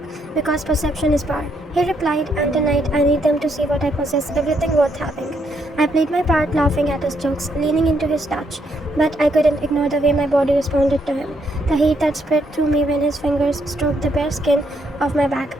Because perception is power. He replied, and tonight I need them to see what I possess, everything worth having. I played my part, laughing at his jokes, leaning into his touch, but I couldn't ignore the way my body responded to him, the heat that spread through me when his fingers stroked the bare skin of my back.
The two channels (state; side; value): normal; both; correlation 0.75